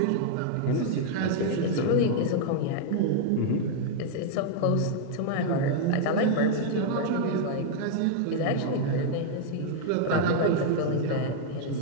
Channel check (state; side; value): different; both; correlation 0.00